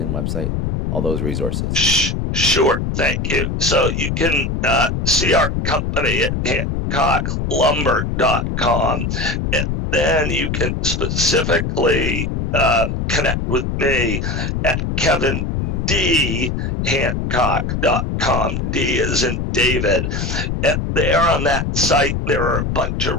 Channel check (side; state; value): left; noise; rumble, 1 dB below the sound